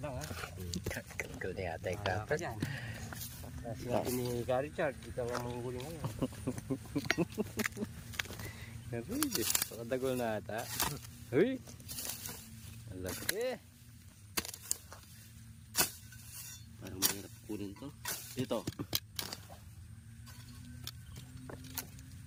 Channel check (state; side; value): identical; both; correlation 1.00